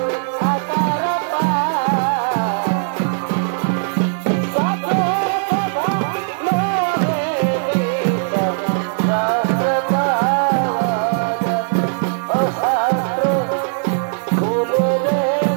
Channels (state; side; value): silent; left; digital silence